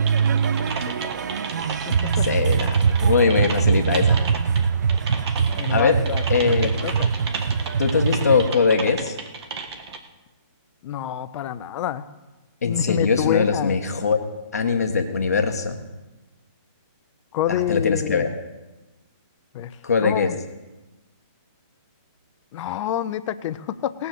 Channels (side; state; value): both; inverted; correlation -0.59